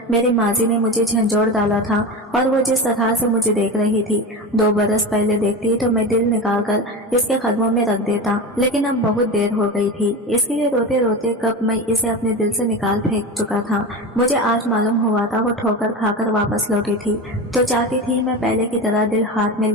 मेरी माजी ने मुझे झंझोड़ डाला था और वो जिस तरह से मुझे देख रही थी 2 बरस पहले देखती तो मैं दिल निकाल कर इसके कदमों में रख देता, लेकिन अब बहुत देर हो गई थी। इसके लिए रोते रोते कब मैं इसे अपने दिल से निकाल फेंक चुका था। मुझे आज मालूम हुआ था वो ठोकर खाकर वापस लौटी थी तो चाहती थी मैं पहले की तरह दिल हाथ में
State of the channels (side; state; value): both; normal; correlation 0.25